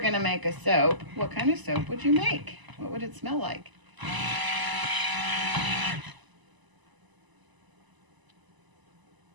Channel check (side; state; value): left; late; 1.0 ms